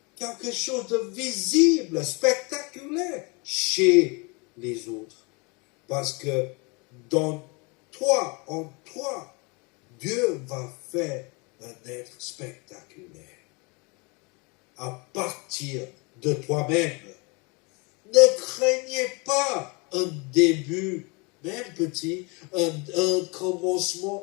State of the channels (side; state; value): right; quieter; 29.5 dB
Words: quelque chose de visible, spectaculaire chez les autres. Parce que dans toi, en toi, Dieu va faire un être spectaculaire. À partir de toi-même. Ne craignez pas un début, même petit, un